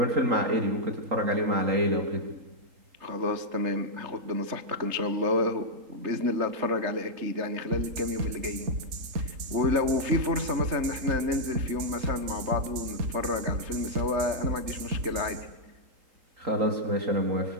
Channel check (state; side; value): late; left; 3.8 ms